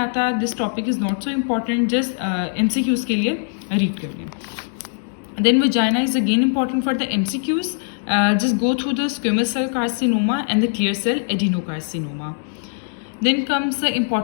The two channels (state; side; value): silent; right; 61 dB below the other